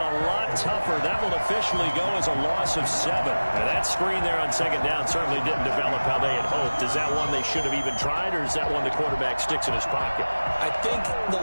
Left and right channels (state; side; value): inverted; both; correlation -1.00